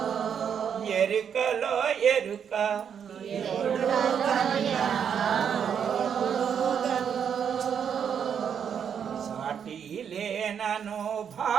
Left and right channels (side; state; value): left; quieter; 7.8 dB